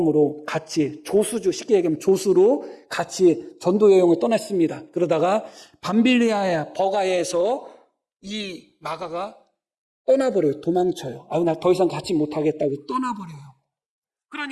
같이 조수주, 쉽게 얘기하면 조수로 같이 전도 여행을 떠났습니다. 그러다가 밤빌리아의 버가에서 이 마가가 떠나버려요. 도망쳐요. 나 더 이상 같이 못하겠다고 떠나버려요.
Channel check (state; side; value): identical; both; correlation 1.00